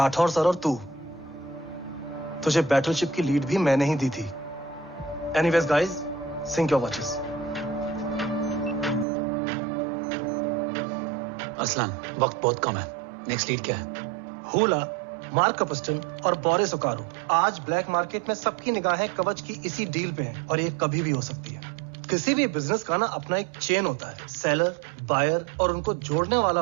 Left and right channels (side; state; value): left; drops out; at 9.1 s